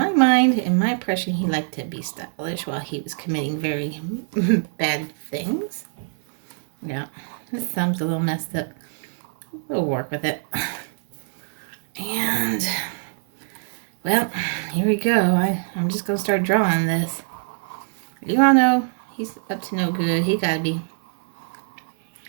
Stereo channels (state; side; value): silent; left; digital silence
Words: mind, in my impression, he liked to be stylish while he was committing very bad things. Yeah, his thumb's a little messed up. We'll work with it. And, well, here we go. I'm just going to start drawing this. You all know he's up to no good. He got to be.